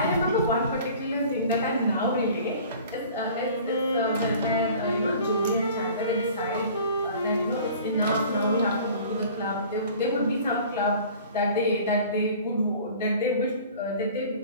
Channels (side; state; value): both; inverted; correlation -0.46